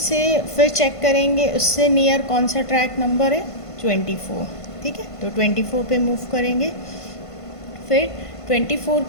से फिर चेक करेंगे उससे नियर कौन सा ट्रैक नंबर है, 24. ठीक है, तो 24 पे मूव करेंगे. फिर 24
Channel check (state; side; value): late; right; 1.5 ms